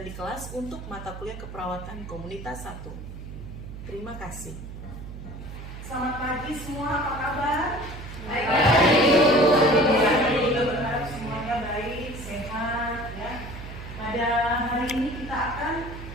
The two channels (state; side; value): noise; right; hum, 11 dB below the sound